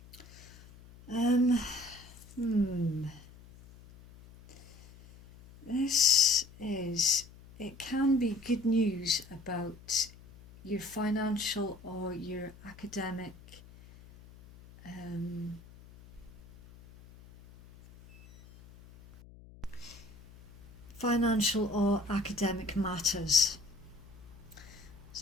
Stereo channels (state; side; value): noise; left; hum, 21 dB below the sound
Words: It can be good news about your financial or your academic matters.